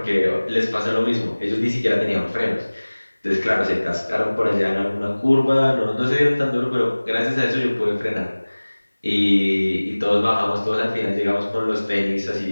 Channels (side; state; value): both; inverted; correlation -1.00